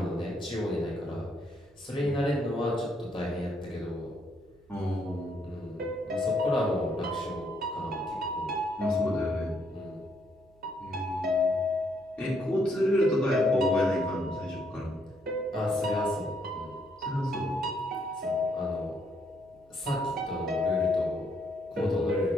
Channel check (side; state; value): right; noise; hum, 30 dB below the sound